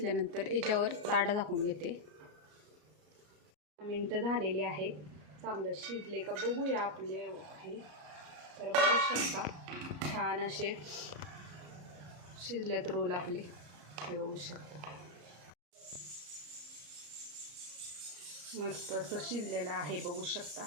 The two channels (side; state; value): left; late; 34 ms